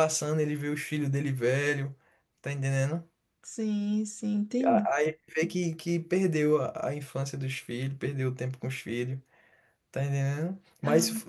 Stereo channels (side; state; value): both; identical; correlation 1.00